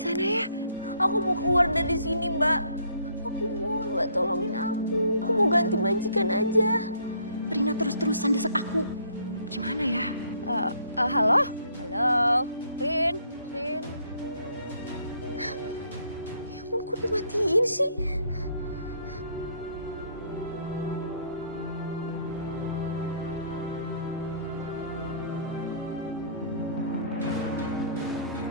ya. Aku mau keluar dari sini, Mbak. Aku mohon, Mbak, tolongin aku. Aku mau ganti majikan aja. Rina terus-terusan desak aku. Gimana ya? Halo? Halo? Rin? Ya ampun, kok dimatiin sih?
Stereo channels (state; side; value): inverted; both; correlation -0.63